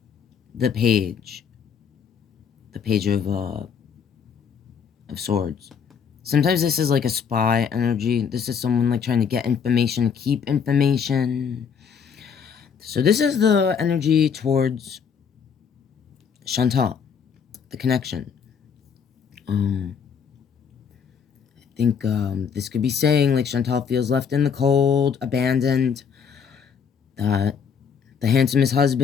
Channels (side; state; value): right; quieter; 6.9 dB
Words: The Page of Swords. Sometimes this is like a spy energy. This is someone like trying to get information, keep information. So this is the energy towards Chantal, the connection. I think this could be saying like Chantal feels left in the cold, abandoned, that the handsomest